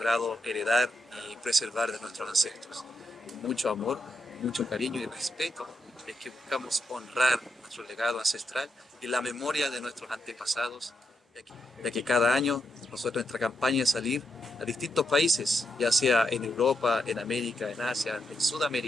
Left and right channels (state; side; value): normal; both; correlation 0.83